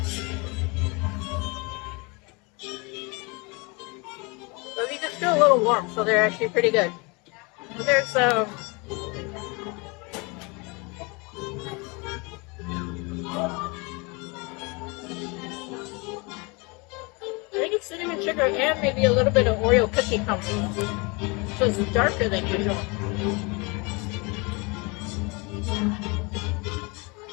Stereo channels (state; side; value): quieter; right; 28.8 dB